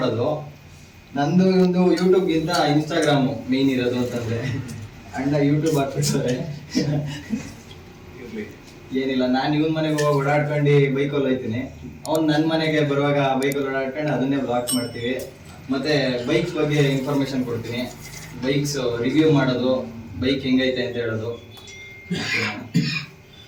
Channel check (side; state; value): both; identical; correlation 1.00